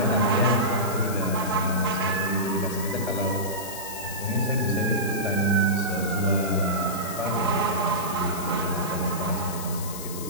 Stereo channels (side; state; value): left; noise; hiss, 10 dB below the sound